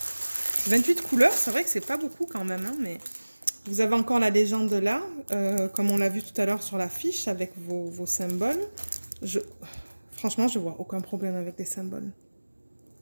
28 couleurs, c'est vrai que c'est pas beaucoup quand même, hein, mais Vous avez encore la légende là, comme on l'a vu tout à l'heure sur la fiche avec vos symboles. Franchement, je vois aucun problème avec les symboles.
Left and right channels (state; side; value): inverted; both; correlation -1.00